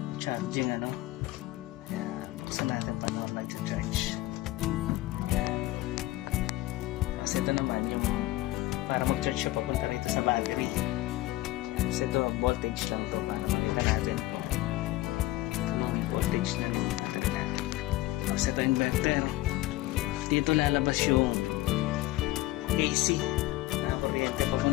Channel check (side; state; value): right; quieter; 17.5 dB